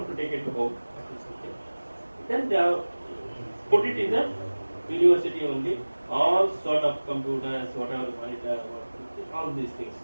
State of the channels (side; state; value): both; inverted; correlation -1.00